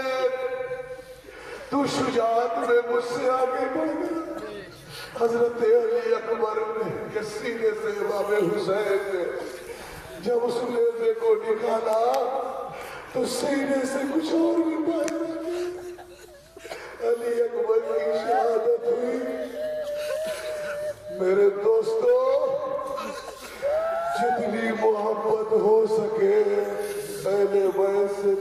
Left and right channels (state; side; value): identical; both; correlation 1.00